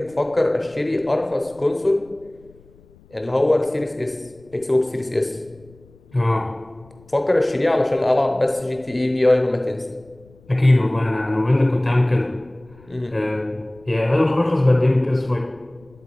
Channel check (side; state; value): left; noise; rumble, 27 dB below the sound